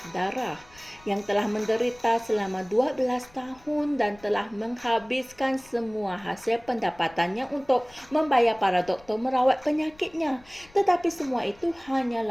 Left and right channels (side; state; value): left; noise; rumble, 27 dB below the sound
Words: darah, yang telah menderita selama 12 tahun dan telah menghabiskan semua hasil pendapatannya untuk membayar para doktor merawat penyakitnya. Tetapi semua itu